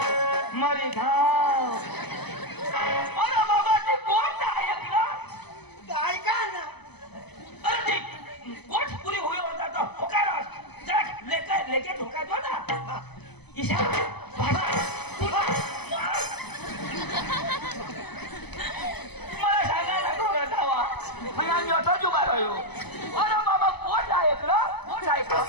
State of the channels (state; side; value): late; right; 0.99 ms